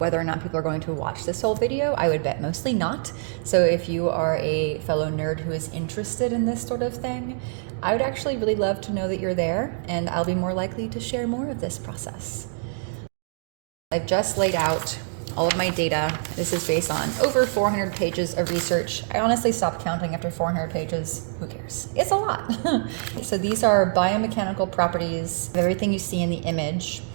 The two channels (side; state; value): left; silent; digital silence